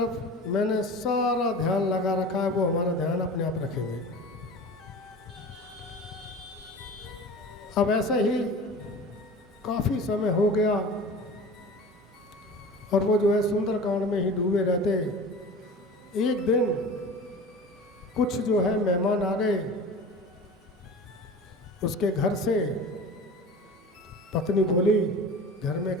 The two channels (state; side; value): normal; both; correlation 0.36